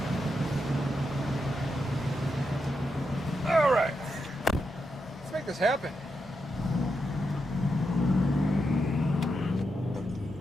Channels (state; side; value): normal; both; correlation 0.85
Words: All right. Let's make this happen.